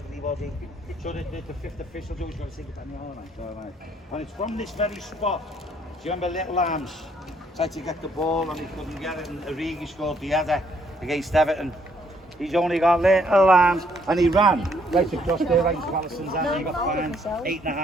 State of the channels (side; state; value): both; normal; correlation 0.68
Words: So the fifth official always going to say, all right. And it's from this very spot, do you remember Little Arms? Tried to get the ball and he couldn't get it, and Origi scored the header against Everton. He's only got little arms, and he ran right across there, right in Palison's hand. He got fined